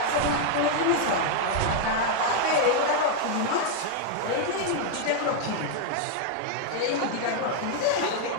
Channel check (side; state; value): both; different; correlation 0.00